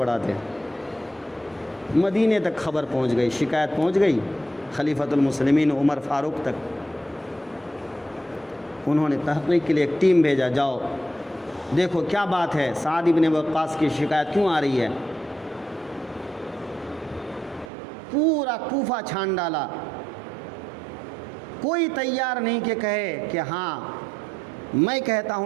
مدینے تک خبر پہنچ گئی، شکایت پہنچ گئی خلیفۃ المسلمین عمر فاروق تک. انہوں نے تحقیق کے لیے ایک ٹیم بھیجا، جاؤ دیکھو کیا بات ہے، سعد بن وقاص کی شکایت کیوں آ رہی ہے. پورا کوفہ چھان ڈالا. کوئی تیار نہیں کہ کہے کہ ہاں میں کہتا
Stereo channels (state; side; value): drops out; left; at 17.7 s